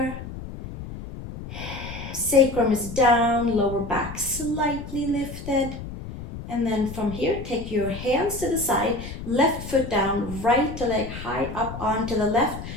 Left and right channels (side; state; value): left; noise; rumble, 10 dB below the sound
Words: Sacrum is down, lower back slightly lifted. And then from here, take your hands to the side, left foot down, right leg high up onto the left,